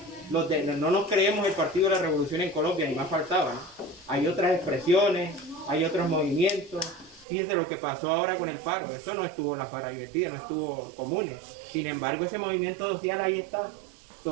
no nos creemos el Partido de la Revolución en Colombia, ni más faltaba, ¿no? Hay otras expresiones, hay otros movimientos. Fíjense lo que pasó ahora con el paro, eso no estuvo en la Faradivertida, no estuvo Comunes. Sin embargo, ese movimiento social ahí está,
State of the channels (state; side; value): drops out; left; at 7.2 s